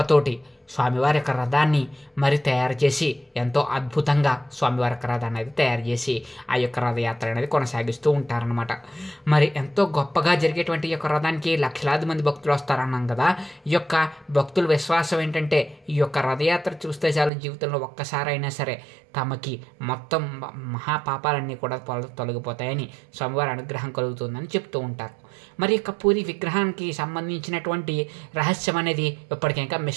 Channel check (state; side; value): drops out; left; at 17.3 s